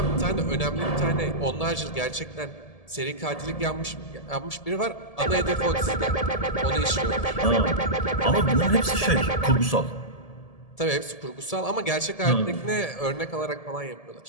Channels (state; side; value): late; right; 1.7 ms